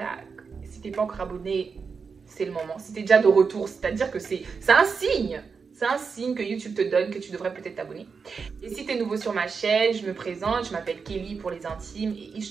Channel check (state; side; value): quieter; left; 5.4 dB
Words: Si t'es pas encore abonné, c'est le moment. Si t'es déjà de retour, c'est-à-dire que c'est un signe. C'est un signe que YouTube te donne que tu devrais peut-être t'abonner. Et si tu es nouveau sur ma chaîne, je me présente, je m'appelle Kelly pour les intimes et It's